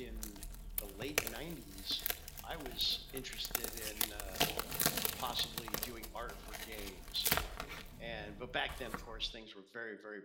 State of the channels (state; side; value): identical; both; correlation 1.00